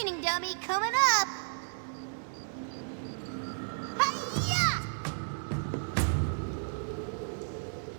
dummy coming up. Hi-ya!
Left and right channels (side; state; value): left; silent; digital silence